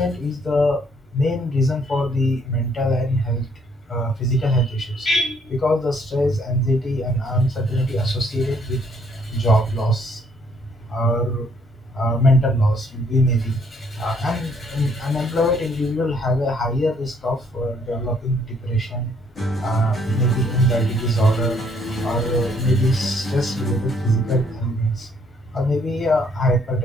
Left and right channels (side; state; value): both; normal; correlation 0.66